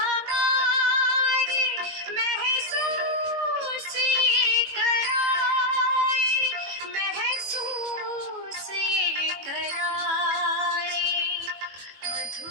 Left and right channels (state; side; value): late; left; 21 ms